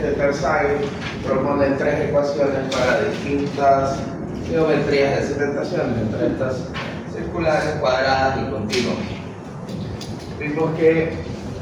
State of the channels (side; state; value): both; identical; correlation 1.00